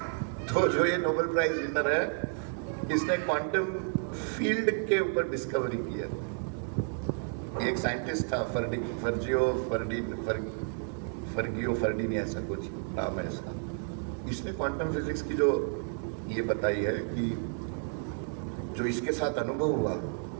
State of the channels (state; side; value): silent; left; 57 dB below the other